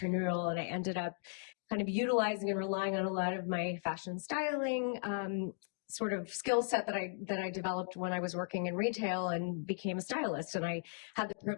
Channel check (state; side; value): silent; right; digital silence